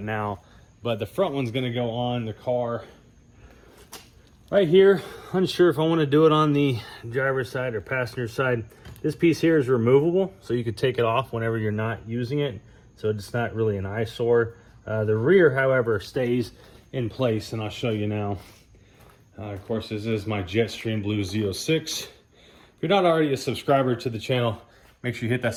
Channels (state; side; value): identical; both; correlation 1.00